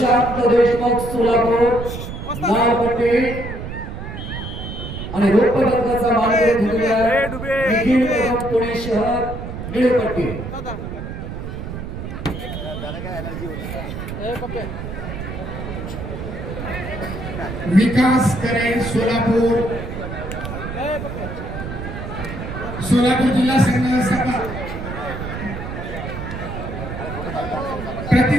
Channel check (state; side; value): noise; right; rumble, 7 dB below the sound